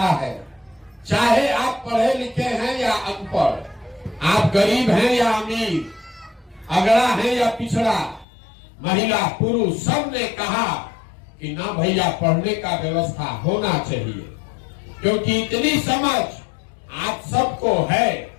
है, चाहे आप पढ़े लिखे हैं या अनपढ़, आप गरीब हैं या अमीर, अगड़ा है या पिछड़ा, महिला पुरुष, सब ने कहा कि ना भैया पढ़ने का व्यवस्था होना चाहिए। क्योंकि इतनी समझ आप सबको है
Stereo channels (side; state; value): right; drops out; at 8.2 s